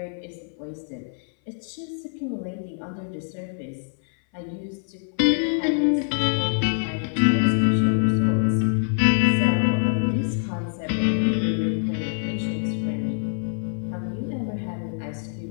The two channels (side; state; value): right; silent; 59 dB below the other